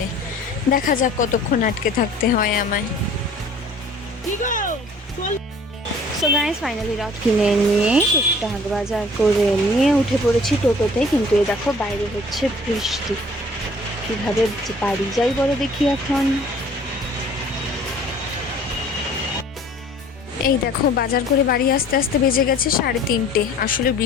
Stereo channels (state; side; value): normal; both; correlation 0.51